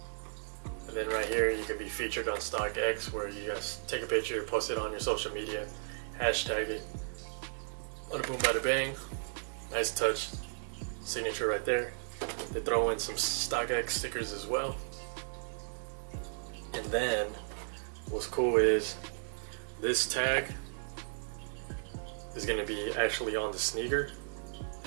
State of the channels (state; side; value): silent; left; digital silence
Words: And then right here, you can be featured on StockX, where you guys take a picture, post it on your social media, hashtag it. Bada boom, bada bang. Nice touch. Signature right there. They throw in some StockX stickers as well. And then what's cool is this tag is going to be actually on the sneaker,